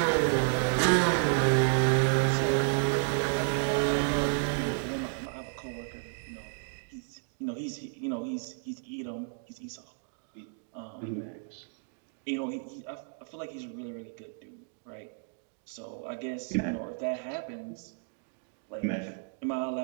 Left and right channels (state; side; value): silent; left; 57 dB below the other